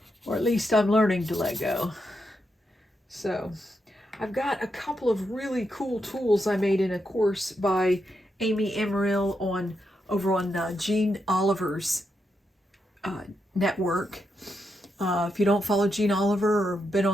Or at least I'm learning to let go. So I've got a couple of really cool tools I made in a course by Amy Emeril over on Jean Oliver's network. If you don't follow Jean Oliver or been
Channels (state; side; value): normal; both; correlation 0.84